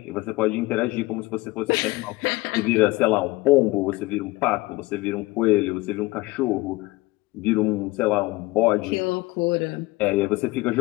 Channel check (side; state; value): right; quieter; 20.7 dB